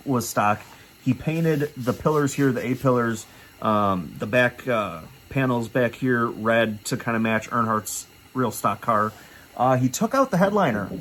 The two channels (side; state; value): both; identical; correlation 1.00